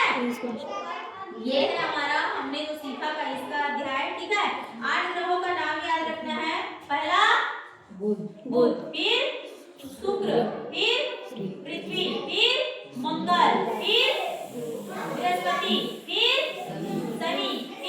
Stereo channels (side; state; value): both; identical; correlation 1.00